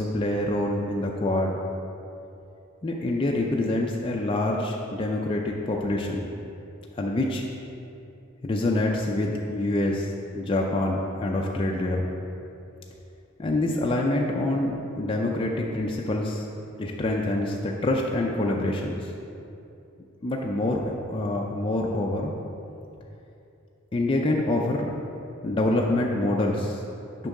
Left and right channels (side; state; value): both; normal; correlation 0.63